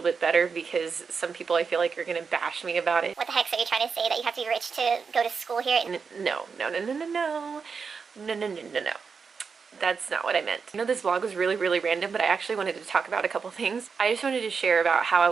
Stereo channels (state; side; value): quieter; left; 5.5 dB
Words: bit better because some people I feel like are going to bash me about it. What the heck, so you're trying to say that you have to be rich to go to school here? No. That's not what I meant. I know this vlog was really random, but I actually wanted to talk about a couple things. I just wanted to share about how I